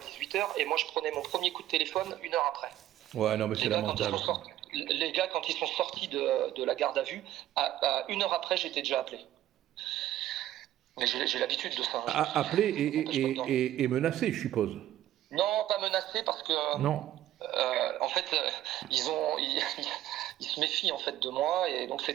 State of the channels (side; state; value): left; quieter; 13.3 dB